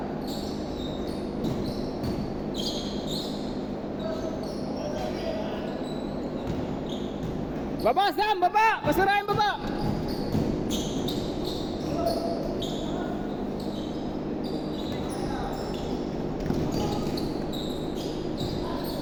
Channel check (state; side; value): identical; both; correlation 1.00